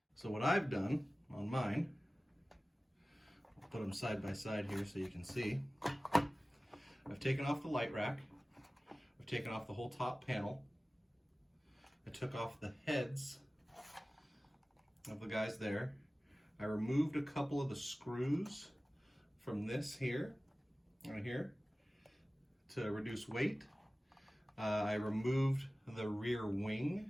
So what I've done on mine, I'll put them side by side here so you can see. I've taken off the light rack. I've taken off the whole top panel. I took off the heads of the guys there. I removed a couple of the screws from this here, right here, to reduce weight. I removed the rear wing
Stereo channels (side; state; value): both; normal; correlation 0.97